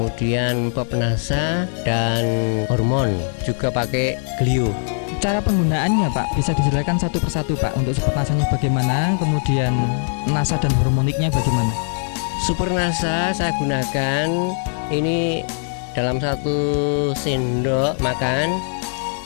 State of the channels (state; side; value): silent; right; 64 dB below the other